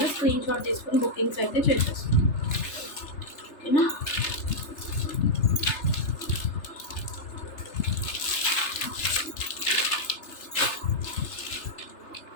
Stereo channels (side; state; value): right; late; 3.3 ms